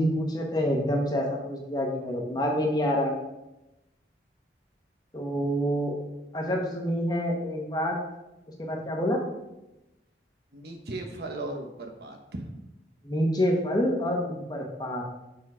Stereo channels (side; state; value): both; normal; correlation 0.63